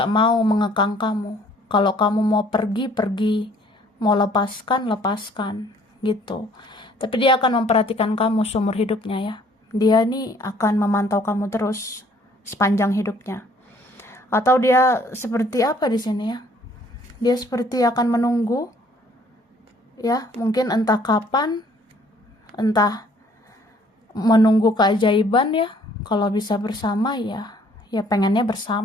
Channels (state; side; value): normal; both; correlation 0.59